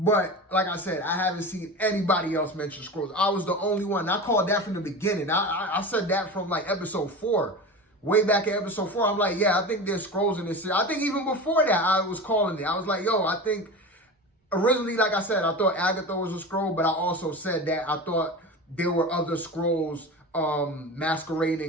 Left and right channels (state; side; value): normal; both; correlation 0.29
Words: like I said, I haven't seen anybody else mention Skrulls. I was the only one. I called that from the beginning. I said that from like episode 4. Way back in episode 4, I'm like, yeah, I think there's Skrulls in this series. I think even before that, I was calling it. I was like, yo, I think... Originally, like I said, I thought Agatha was a Skrull, but I also said that I thought there were other Skrulls